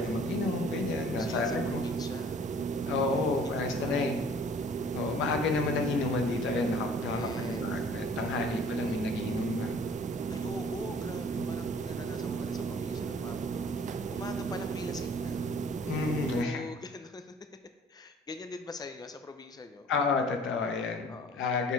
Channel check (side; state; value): both; normal; correlation 0.52